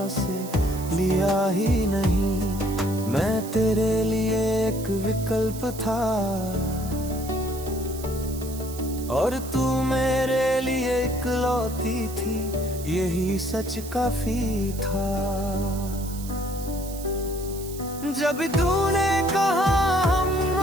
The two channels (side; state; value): right; noise; hiss, 14 dB below the sound